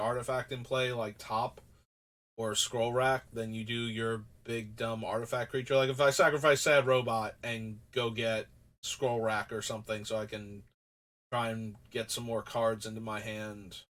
in play like Top or Scroll Rack than you do your big dumb artifact creature. Like, if I sacrifice Sad Robot and go get Scroll Rack or something so I can try and get some more cards into my hand,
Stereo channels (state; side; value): identical; both; correlation 1.00